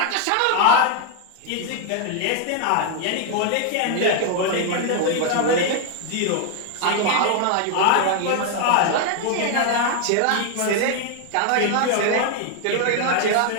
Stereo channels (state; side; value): different; both; correlation 0.00